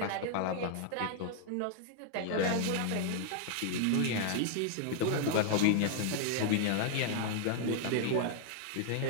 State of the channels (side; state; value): both; different; correlation 0.00